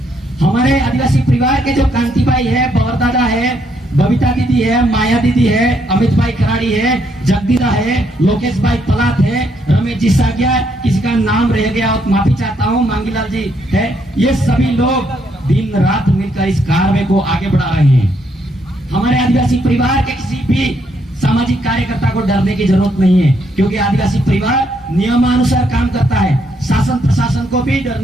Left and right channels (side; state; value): both; normal; correlation 0.73